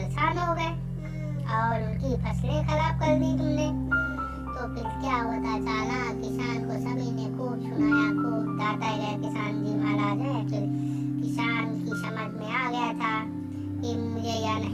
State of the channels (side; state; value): both; identical; correlation 1.00